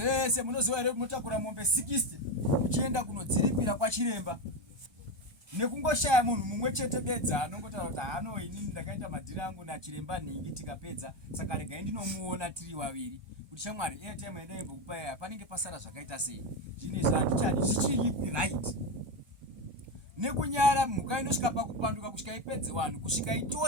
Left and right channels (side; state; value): left; late; 1.2 ms